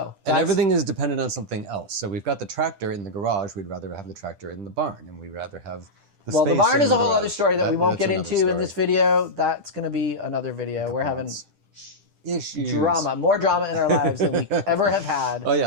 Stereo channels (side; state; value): left; late; 10 ms